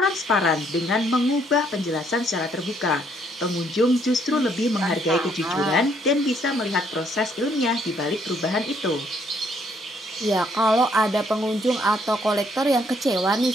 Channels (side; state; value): both; normal; correlation 0.68